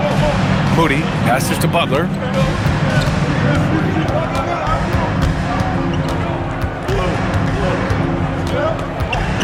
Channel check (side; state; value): both; identical; correlation 1.00